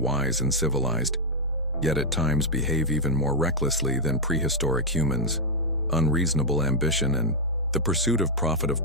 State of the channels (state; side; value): normal; both; correlation -0.01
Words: and civilized, yet at times behave even more recklessly than prehistoric humans. Unreasonable ambition and the pursuit of profit of